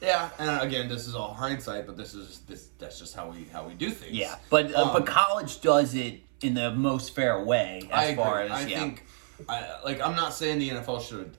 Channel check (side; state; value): left; silent; 58 dB below the other